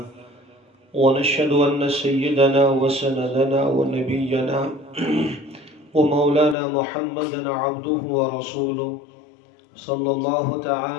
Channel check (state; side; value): drops out; right; at 6.6 s